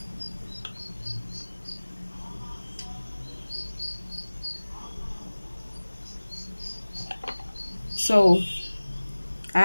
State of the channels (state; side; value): inverted; both; correlation -1.00